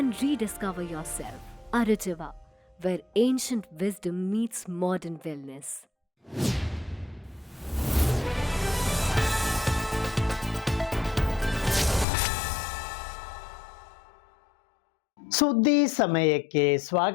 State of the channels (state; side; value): drops out; right; at 12.1 s